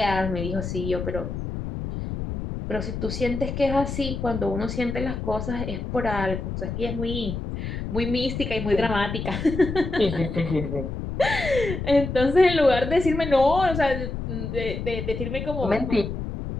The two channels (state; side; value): noise; left; rumble, 5 dB below the sound